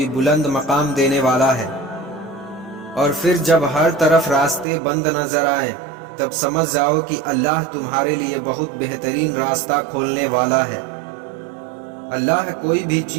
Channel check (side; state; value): left; drops out; at 4.7 s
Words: बुलंद मकाम देने वाला है। और फिर जब हर तरफ रास्ते बंद नजर आए तब समझ जाओ कि अल्लाह तुम्हारे लिए बहुत बेहतरीन रास्ता खोलने वाला है। अल्लाह कोई भी